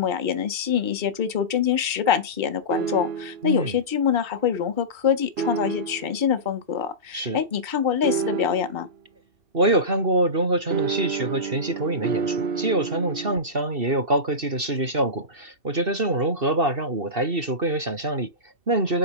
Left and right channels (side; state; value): left; late; 2.7 ms